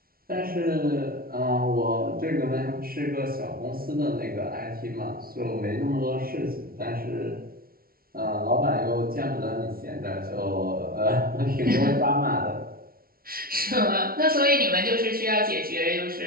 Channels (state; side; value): late; left; 0.43 ms